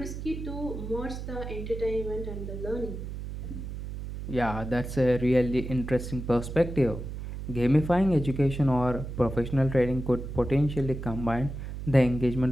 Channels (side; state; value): right; noise; hum, 7 dB below the sound